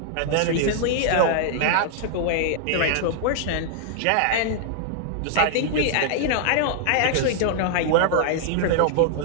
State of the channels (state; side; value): different; both; correlation -0.01